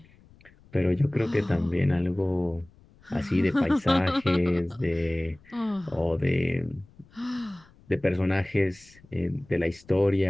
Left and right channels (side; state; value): left; noise; rumble, 27 dB below the sound